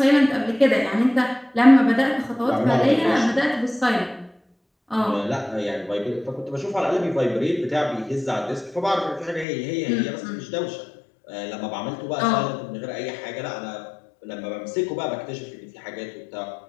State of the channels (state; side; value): drops out; right; at 9.5 s